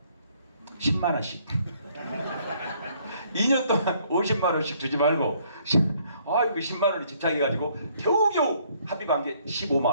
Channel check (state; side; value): inverted; both; correlation -0.65